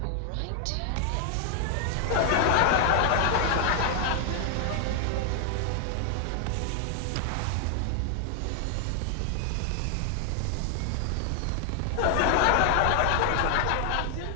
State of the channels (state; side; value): different; both; correlation 0.00